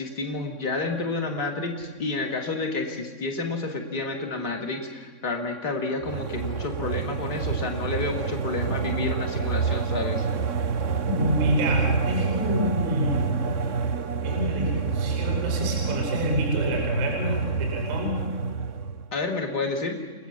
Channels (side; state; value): right; late; 3.6 ms